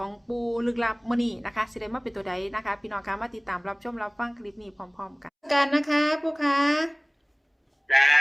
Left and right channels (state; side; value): identical; both; correlation 1.00